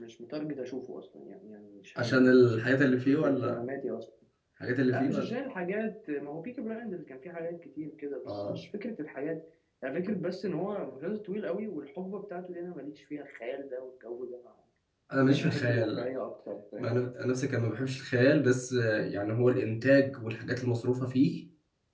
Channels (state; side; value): identical; both; correlation 1.00